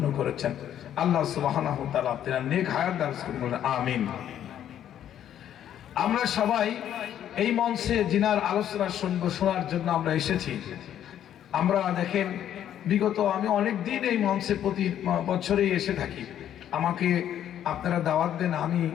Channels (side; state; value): right; quieter; 10.6 dB